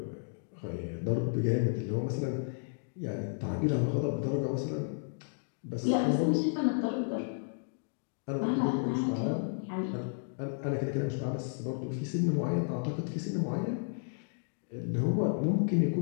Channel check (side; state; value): right; silent; digital silence